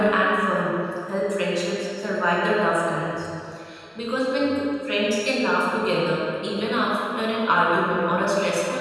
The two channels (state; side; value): identical; both; correlation 1.00